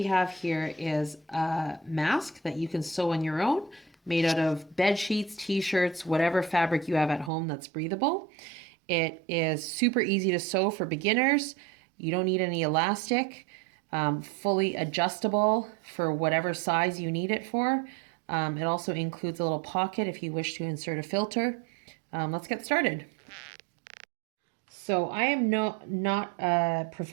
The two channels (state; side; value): drops out; left; at 7.3 s